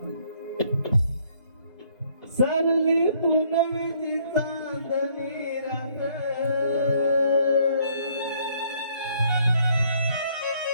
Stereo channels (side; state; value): both; inverted; correlation -0.65